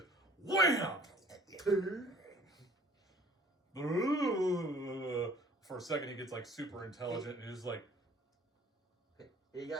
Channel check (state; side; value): normal; both; correlation 0.53